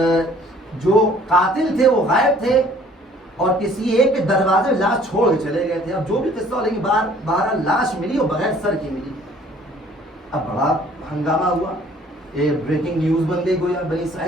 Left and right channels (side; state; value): both; normal; correlation 0.56